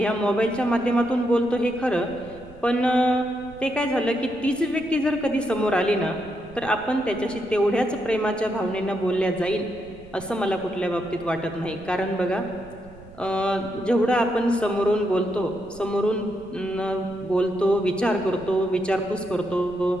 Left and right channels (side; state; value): right; noise; rumble, 21 dB below the sound